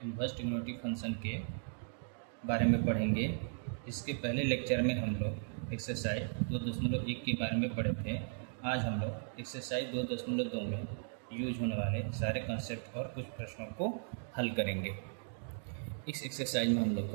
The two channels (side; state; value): left; silent; digital silence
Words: inverse trigonometric function के बारे में पढ़ेंगे। इसके पहले लेक्चर में हम लोग एक्सरसाइज 2.1 के बारे में पढ़े थे। आज हम लोग एक्सरसाइज 2.2 में यूज होने वाले सारे कंसेप्ट और कुछ प्रश्नों को हल करेंगे। इस एक्सरसाइज में हम लोग